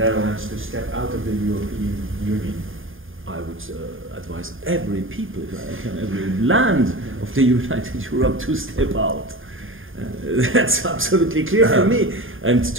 Netherlands to step out of the European Union? I would advise every people, if I can, every land of the United Europe to step out. That's absolutely clear for me. And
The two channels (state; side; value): late; left; 0.59 ms